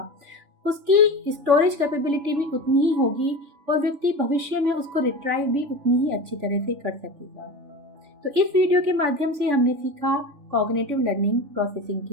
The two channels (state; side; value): late; left; 3.5 ms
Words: उसकी स्टोरेज कैपेबिलिटी भी उतनी ही होगी और व्यक्ति भविष्य में उसको रिट्राइव भी उतनी ही अच्छी तरह से कर सकेगा। तो इस वीडियो के माध्यम से हमने सीखा कॉग्निटिव लर्निंग प्रोसेसिंग